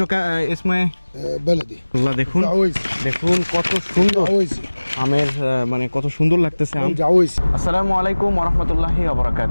ইসমে بلدي আল্লাহ, দেখুন جعويسي দেখুন কত সুন্দর جعويسي আমের মানে কত সুন্দর লাগতেছে আম। جعويسي আসসালামু আলাইকুম ওয়া রাহমাতুল্লাহি ওয়া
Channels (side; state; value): both; inverted; correlation -1.00